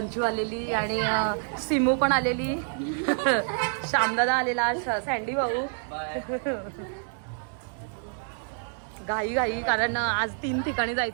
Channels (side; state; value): left; silent; 60 dB below the other